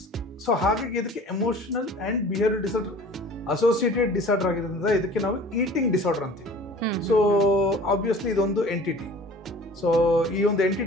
So ಹಾಗಾಗಿ ಇದಕ್ಕೆ emotional and behavioural disorder associated disorder ಆಗಿರೋದ್ರಿಂದ ಇದಕ್ಕೆ ನಾವು ಈಟಿಂಗ್ ಡಿಸಾರ್ಡರ್ ಅಂತೀವಿ. ಸೊ ಆಬ್ವಿಯಸ್ಲಿ ಇದೊಂದು ಎಂಟಿಟಿ. ಸೊ ಈ ಒಂದು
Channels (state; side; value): normal; both; correlation 0.45